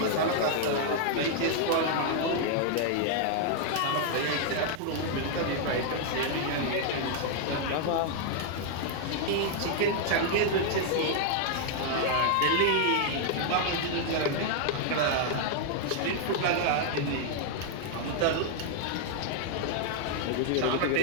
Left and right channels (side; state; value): both; different; correlation 0.00